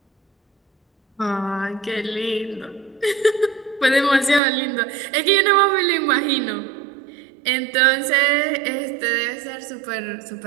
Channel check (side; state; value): left; drops out; at 4.4 s